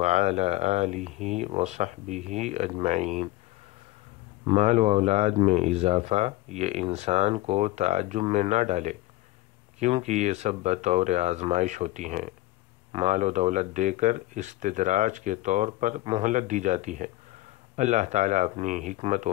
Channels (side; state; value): right; quieter; 17.9 dB